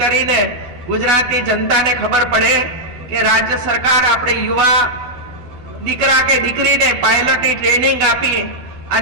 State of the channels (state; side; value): late; left; 12 ms